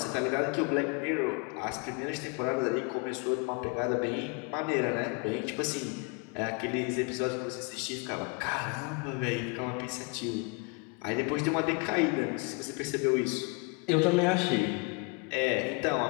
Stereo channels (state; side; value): quieter; right; 31.2 dB